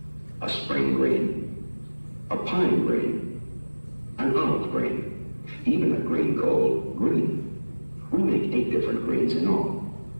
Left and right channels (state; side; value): inverted; both; correlation -1.00